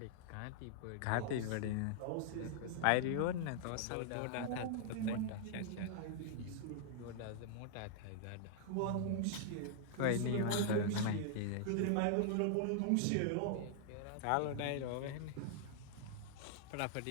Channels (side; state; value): both; different; correlation -0.01